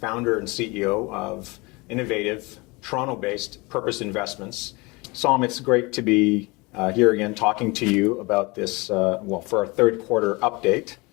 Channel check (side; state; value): right; quieter; 25.6 dB